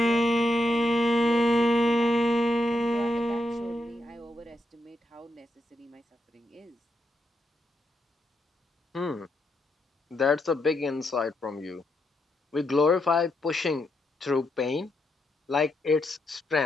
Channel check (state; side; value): normal; both; correlation 0.82